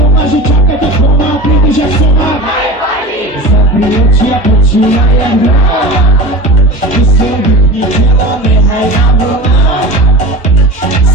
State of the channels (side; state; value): both; normal; correlation 0.33